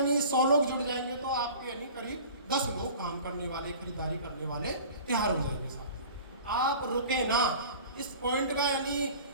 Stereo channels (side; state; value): both; inverted; correlation -0.42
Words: 100 लोग जुड़ जाएंगे तो आपके यानी करीब 10 लोग काम करने वाले, खरीदारी करने वाले तैयार हो जाएंगे। साथ आप रुके ना, इस पॉइंट का यानी